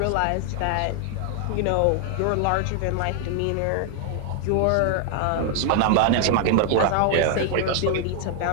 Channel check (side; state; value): both; different; correlation 0.00